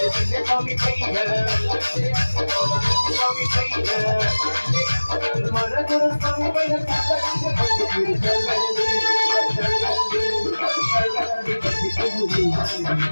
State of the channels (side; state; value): both; inverted; correlation -1.00